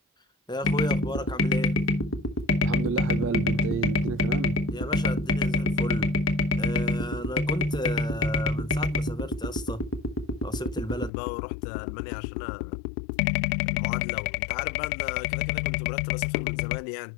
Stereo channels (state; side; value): drops out; right; at 11.1 s